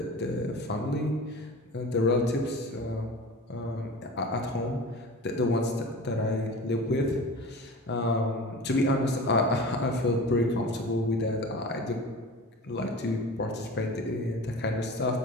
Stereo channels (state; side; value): normal; both; correlation 0.36